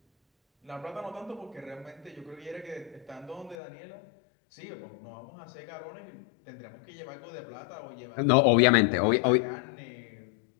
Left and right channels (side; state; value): right; drops out; at 3.6 s